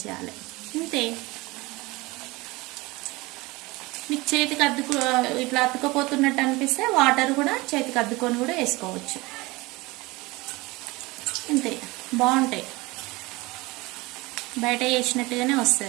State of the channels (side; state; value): left; quieter; 22.5 dB